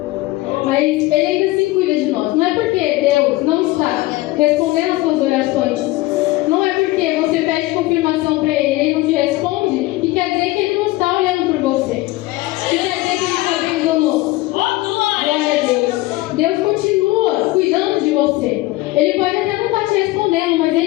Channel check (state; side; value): quieter; right; 19.1 dB